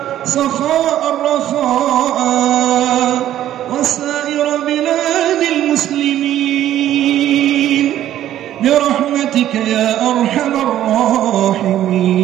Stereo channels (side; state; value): left; quieter; 12.2 dB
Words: سخاء رخاء، وسائر بلاد المسلمين برحمتك يا أرحم